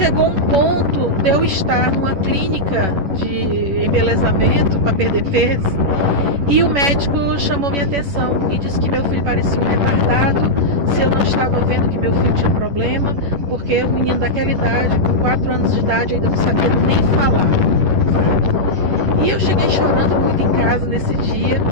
um ponto de eu estar numa clínica de embelezamento para perder peso e o médico chamou minha atenção e disse que meu filho parecia um retardado, se eu não estava vendo que meu filho tinha problema, porque o menino daquela idade, com 4 anos de idade, ainda não sabia nem falar. E eu cheguei chorando muito em casa nesse dia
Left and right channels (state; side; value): late; left; 11 ms